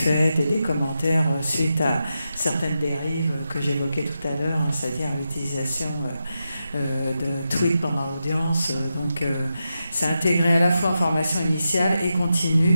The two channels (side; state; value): both; inverted; correlation -0.88